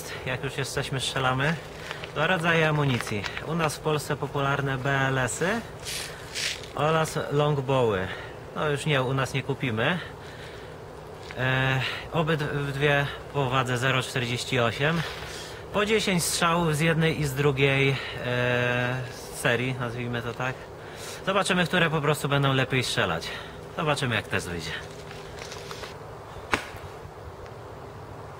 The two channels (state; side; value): identical; both; correlation 1.00